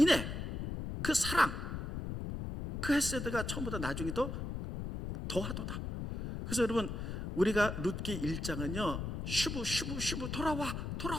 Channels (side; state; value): left; noise; rumble, 5 dB below the sound